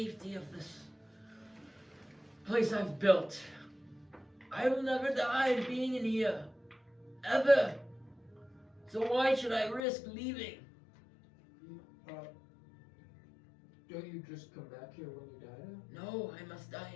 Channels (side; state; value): right; drops out; at 9.8 s